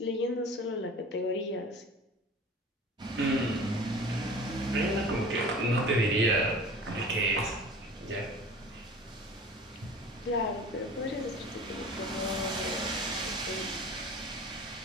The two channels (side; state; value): both; normal; correlation 0.40